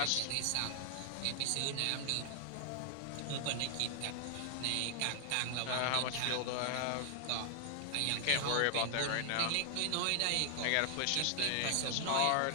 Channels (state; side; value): different; both; correlation 0.00